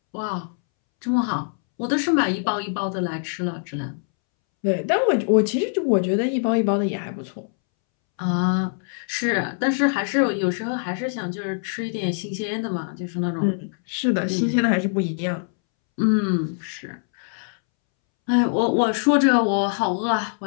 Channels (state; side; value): silent; right; 63 dB below the other